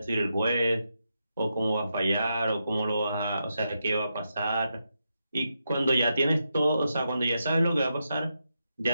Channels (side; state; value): both; inverted; correlation -0.85